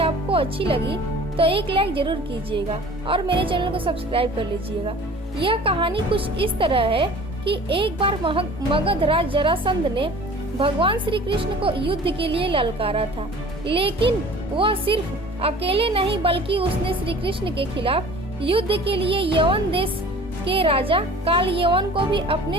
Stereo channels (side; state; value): both; normal; correlation 0.45